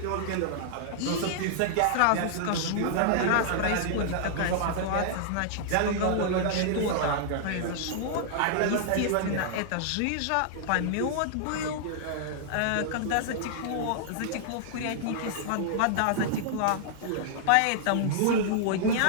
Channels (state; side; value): different; both; correlation -0.01